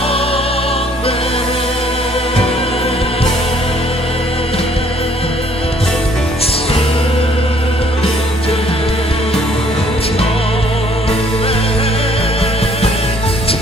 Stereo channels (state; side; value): normal; both; correlation 0.62